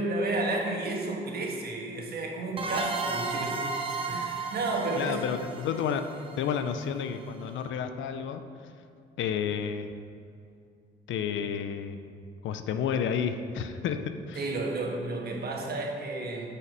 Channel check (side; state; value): both; normal; correlation 0.28